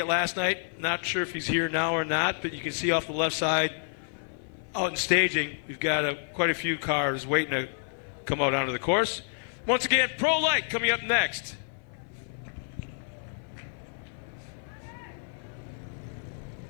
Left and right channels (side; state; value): right; silent; 57 dB below the other